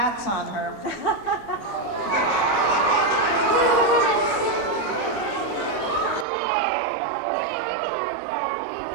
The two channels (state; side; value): drops out; left; at 6.2 s